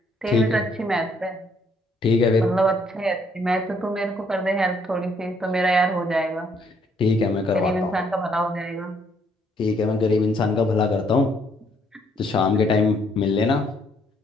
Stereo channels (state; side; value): normal; both; correlation 0.68